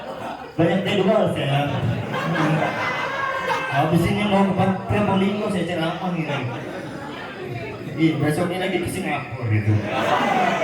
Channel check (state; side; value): identical; both; correlation 1.00